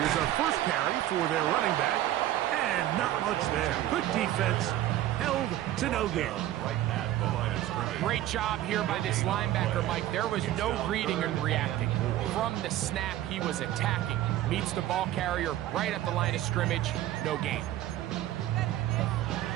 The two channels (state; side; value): quieter; left; 13.6 dB